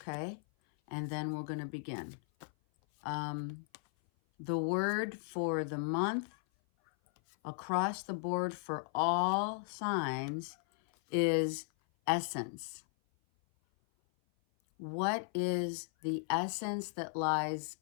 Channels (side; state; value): right; silent; 54 dB below the other